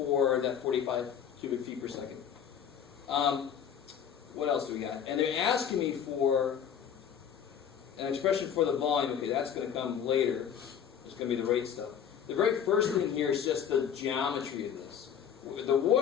that 45 cubic feet per second. What else do we got? And they're asking me for an expression for the volume. Okay, that's going to come later. It's going to be the rate stuff. The very first thing here is just the geometry of this. The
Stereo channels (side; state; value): right; quieter; 8.3 dB